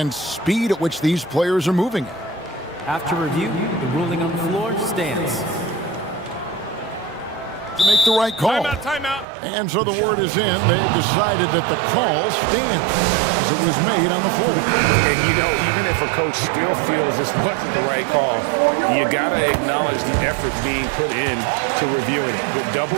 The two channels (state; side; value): drops out; left; at 9.2 s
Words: speed at which these players are moving at. After review, the ruling on the floor stands. To make the right call. Timeout. And so the word is in. They've decided that the call stands as it was made on the floor. And, you know, even if a coach still feels this wasn't the right call, you got to acknowledge the effort being put in to reviewing it. The